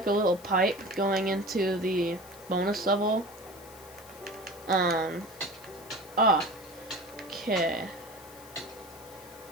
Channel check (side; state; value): left; noise; hiss, 20 dB below the sound